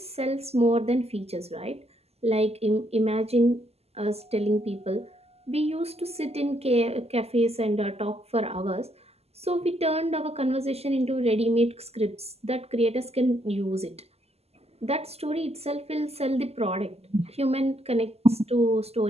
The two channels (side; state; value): left; late; 0.30 ms